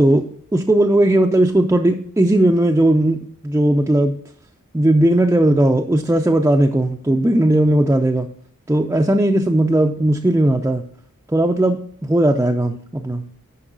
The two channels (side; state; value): both; normal; correlation 0.89